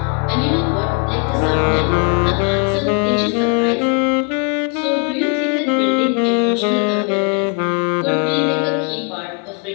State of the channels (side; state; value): right; quieter; 36.4 dB